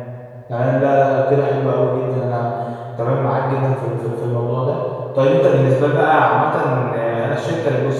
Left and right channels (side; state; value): both; identical; correlation 1.00